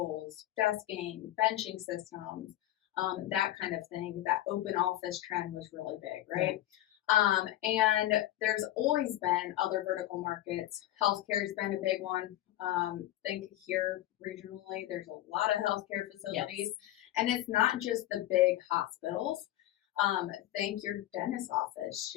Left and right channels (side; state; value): right; quieter; 14.3 dB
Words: desking, benching systems, that kind of thing. That open office trend was really big, right? And there's always been other vertical markets. Healthcare's been a big one. Think here regionally, there's a lot of healthcare facilities, and it's not just the big hospitals. Think your dentist office,